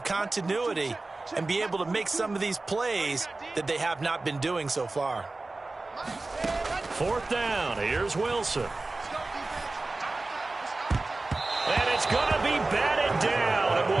continuity and be able to make some of these plays that they have not been doing so far. 4th down. Here's Wilson. And it's going to be batted down. It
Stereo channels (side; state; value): left; quieter; 3.2 dB